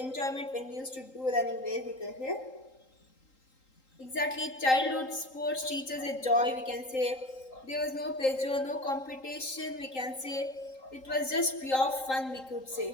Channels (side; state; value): right; late; 3.8 ms